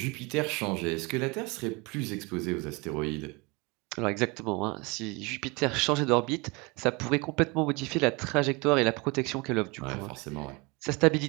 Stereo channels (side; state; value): left; quieter; 27.1 dB